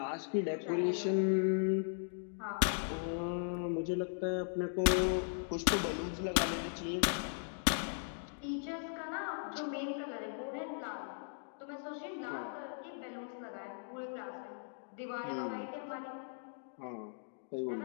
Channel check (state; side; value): silent; right; digital silence